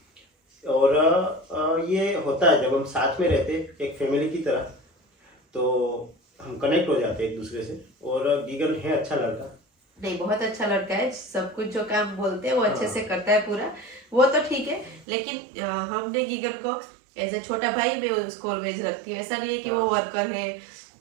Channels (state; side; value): drops out; left; at 15.1 s